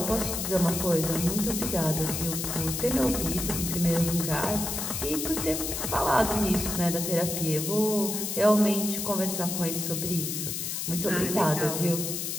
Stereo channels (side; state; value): left; noise; hiss, 3 dB below the sound